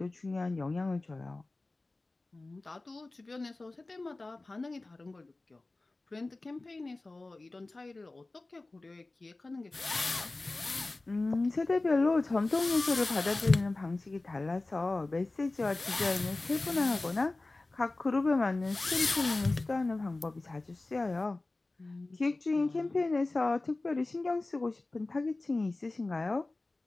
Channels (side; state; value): right; quieter; 3.1 dB